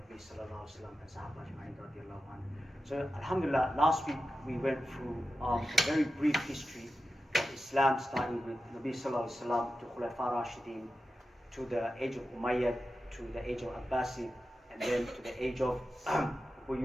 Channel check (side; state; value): both; normal; correlation 0.92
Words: sallallahu alaihi wasallam and Sahaba Ajma'in radiyallahu anhu. So Alhamdulillah, last week we went through a very brief history of Islam, starting with Nabi sallallahu alaihi wasallam to Khulafa Rashidin, to the age of Umayyad, to the age of Abbasid, and then to the age of